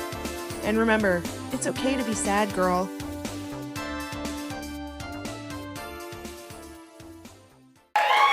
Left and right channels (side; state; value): both; identical; correlation 1.00